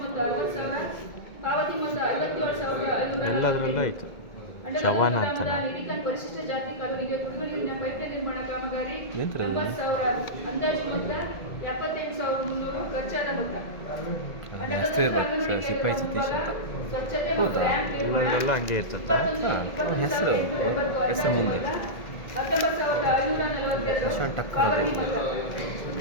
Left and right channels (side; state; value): right; late; 1.9 ms